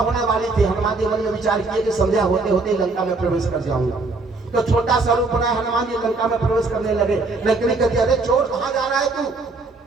वाली थी। हनुमान जी मन में विचार किए कि संध्या होते होते लंका में प्रवेश कर जाऊंगा। तो छोटा सा रूप बनाया हनुमान जी लंका में प्रवेश करने लगे। लंकिनी कहती अरे चोर कहां जा रहा है तू,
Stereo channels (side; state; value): left; quieter; 3.6 dB